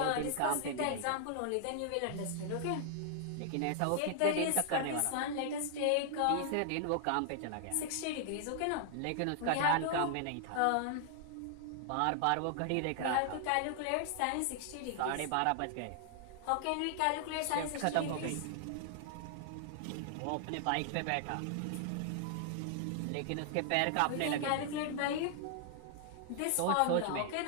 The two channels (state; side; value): different; both; correlation -0.01